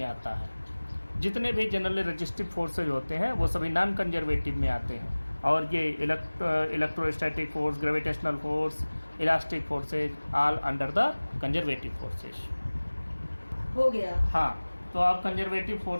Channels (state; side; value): inverted; both; correlation -1.00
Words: आता है। जितने भी जनरली रजिस्टिव फोर्सेज होते हैं वो सभी नॉन कंजर्वेटिव में आते हैं, और ये electrostatic force, gravitational force, elastic forces all under the conservative forces. हो गया। हाँ, तो आप कंजर्वेटिव